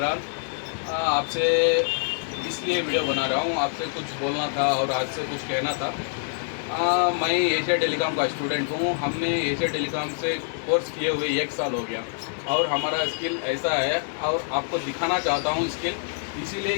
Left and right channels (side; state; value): right; silent; digital silence